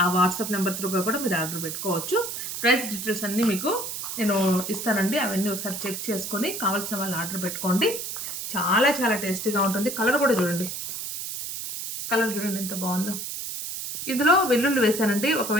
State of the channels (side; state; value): right; noise; hiss, 6 dB below the sound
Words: ఆ వాట్సాప్ నెంబర్ త్రూగా కూడా మీరు ఆర్డర్ పెట్టుకోవచ్చు. ప్రైస్ డీటెయిల్స్ అన్నీ మీకు నేను ఇస్తానండి. అవన్నీ ఒకసారి చెక్ చేసుకొని కావాల్సిన వాళ్ళు ఆర్డర్ పెట్టుకోండి. చాలా చాలా టేస్టీగా ఉంటుంది. కలర్ కూడా చూడండి, కలర్ చూడండి ఎంత బాగుందో. ఇందులో వెల్లుల్లి వేసానండి.